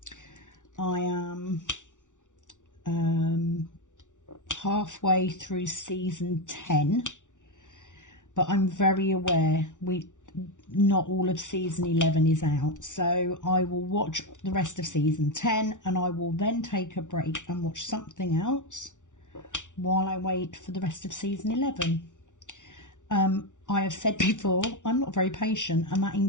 I am halfway through season 10, but I'm very aware not all of season 11 is out, so I will watch the rest of season 10 and I will then take a break and watch something else while I wait for the rest of season 11. I have said before, I'm not very patient, and that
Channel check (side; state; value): right; late; 0.87 ms